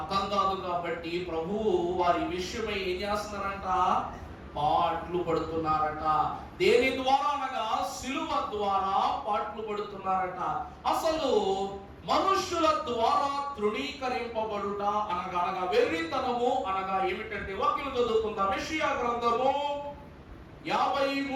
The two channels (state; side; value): identical; both; correlation 1.00